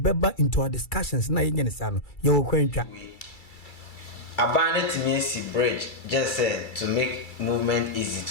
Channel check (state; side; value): late; right; 2.3 ms